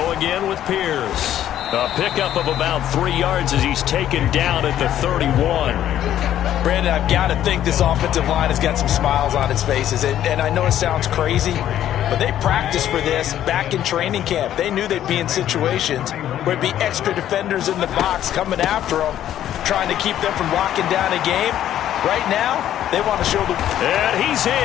again with Pierce. A pickup of about 3 yards as he's taken down at the 31. Brandon, I've got to think this offensive line has got some smiles on its faces. And I know it sounds crazy, but they practiced for this back in training camp. They knew they'd be in situations where it'd be extra defenders in the box coming after them, trying to keep them from locking down a game. Right now, they want to show the... And he's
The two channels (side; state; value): right; quieter; 11.5 dB